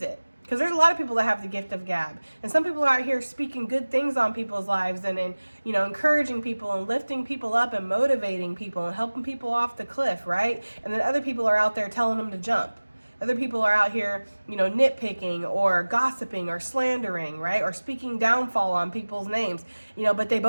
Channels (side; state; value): both; inverted; correlation -1.00